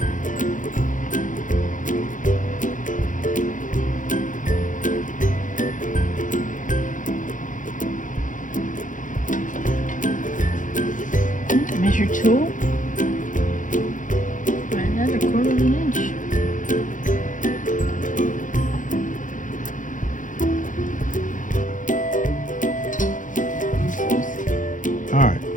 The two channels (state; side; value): late; right; 0.38 ms